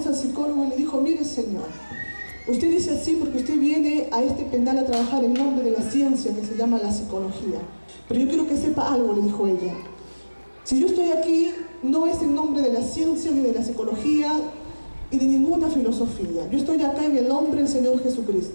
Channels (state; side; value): inverted; both; correlation -1.00